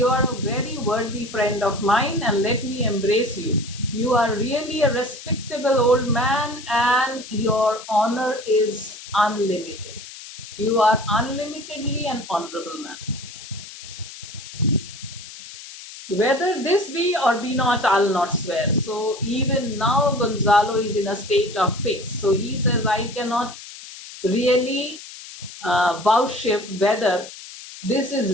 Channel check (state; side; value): noise; left; hiss, 14 dB below the sound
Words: are a very worthy friend of mine and let me embrace you. You are really a respectable old man and your honor is unlimited. You are unlimitedly an honorable man. Whether this be or be not, I'll not swear. So even now Gonzalo is in a state of fix. So he says, I cannot really vouchsafe whether this